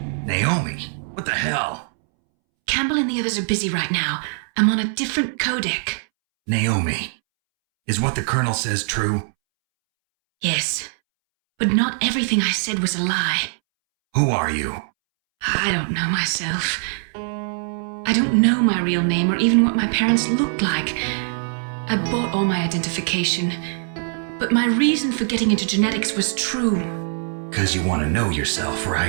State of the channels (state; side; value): silent; left; 64 dB below the other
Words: Naomi? What the hell? Campbell and the others are busy right now. I'm on a different codec. Naomi, is what the Colonel says true? Yes, but not everything I said was a lie. Who are you? I don't know myself. I don't know my real name or even what my parents looked like. I bought all my identification, but my reason for getting into genetics was true. 'Cause you want to know yourself,